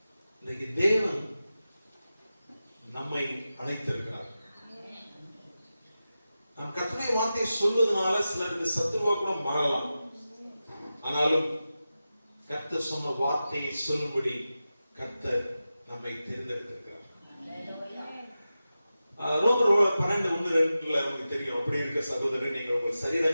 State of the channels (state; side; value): inverted; both; correlation -0.93